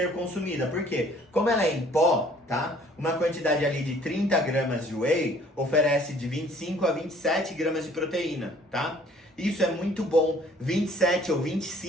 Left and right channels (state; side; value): normal; both; correlation 0.57